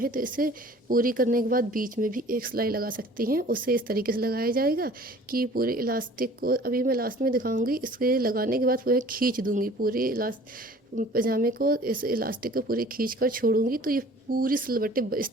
तो इसे पूरी करने के बाद बीच में भी एक सिलाई लगा सकती हैं। उसे इस तरीके से लगाया जाएगा कि पूरे इलास्टिक को, अभी मैं लास्ट में दिखाऊंगी, इसके लगाने के बाद पूरे खींच दूंगी पूरे पजामे को, इस इलास्टिक को पूरी खींच कर छोड़ूंगी। तो ये पूरी सिलवटें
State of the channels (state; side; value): normal; both; correlation 0.49